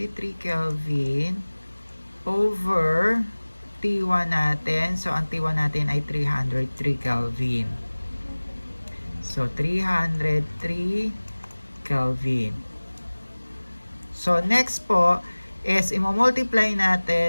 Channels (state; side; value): inverted; both; correlation -1.00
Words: Kelvin over T1 natin. So, ang T1 natin ay 303 Kelvin. So, 303 Kelvin. So, next po is i-multiply